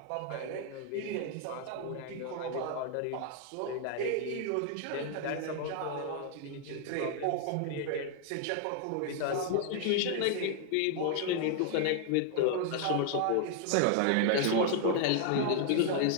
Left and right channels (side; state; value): both; different; correlation 0.00